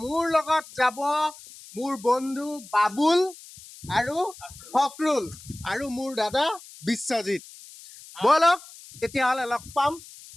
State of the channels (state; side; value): noise; left; hiss, 19 dB below the sound